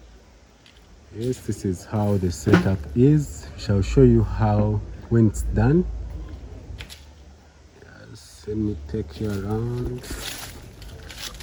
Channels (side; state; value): both; identical; correlation 1.00